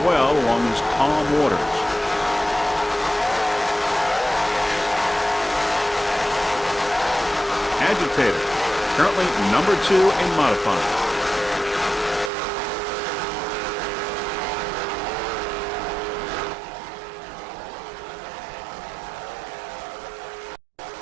well along these calm waters. Agitator, currently number 2 in modified.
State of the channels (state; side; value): drops out; left; at 12.3 s